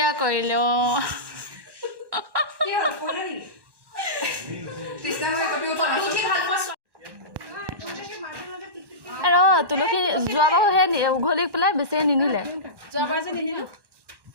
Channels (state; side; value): late; left; 1.1 ms